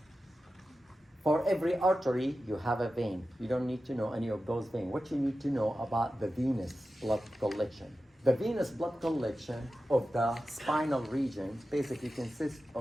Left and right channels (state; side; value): normal; both; correlation 0.93